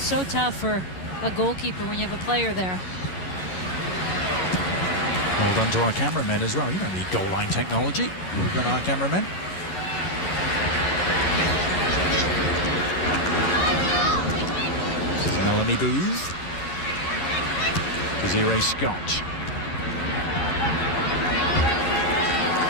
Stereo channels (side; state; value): right; late; 11 ms